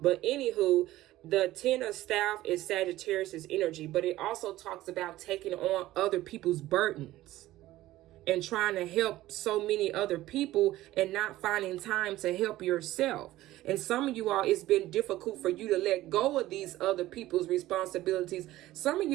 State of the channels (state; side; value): quieter; left; 15.9 dB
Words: anywho, the Ten of Staff is Sagittarius's energy, but it also talks about taking on other people's burdens and trying to help so many other people and not finding time to help yourself. And some of you all, it's been difficult for you to let go of these other people's responsibilities. Some of